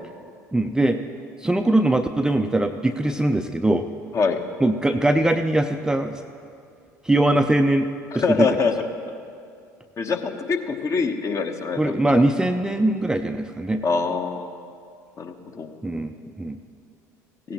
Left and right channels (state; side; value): normal; both; correlation 0.84